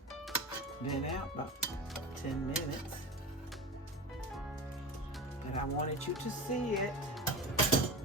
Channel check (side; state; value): both; normal; correlation 0.27